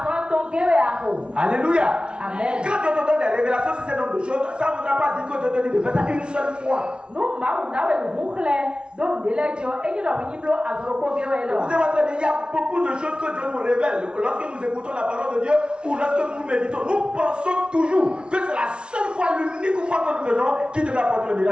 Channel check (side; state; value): left; late; 0.057 ms